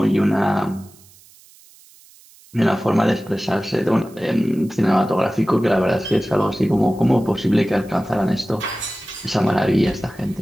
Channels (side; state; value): right; noise; hiss, 26 dB below the sound